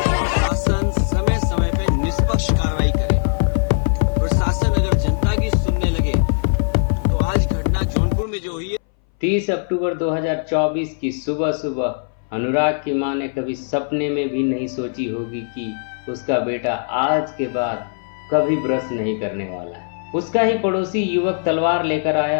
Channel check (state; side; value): silent; right; 61 dB below the other